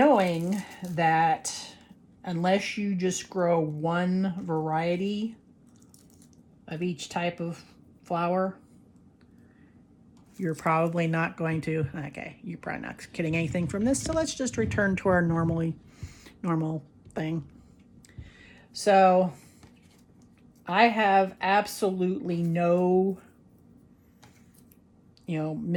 that unless you just grow one variety of each type of flower, you're probably not going to, okay, you're probably not getting anything from this, so let's just return to our normal thing. So I have absolutely no,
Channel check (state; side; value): identical; both; correlation 1.00